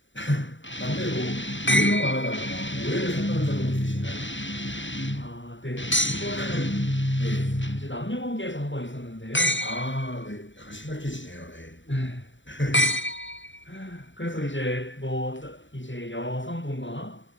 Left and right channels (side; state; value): right; late; 0.54 ms